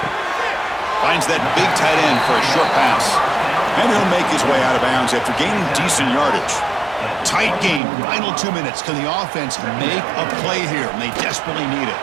Finds that big tight end for a short pass. And he'll make his way out of bounds after gaining decent yardage. Tight game, final 2 minutes. Can the offense make a play here? And they desperately need it.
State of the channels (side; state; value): left; drops out; at 7.8 s